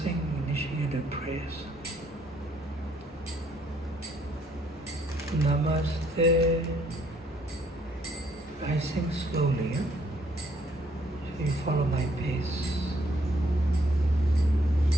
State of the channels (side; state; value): both; normal; correlation 0.67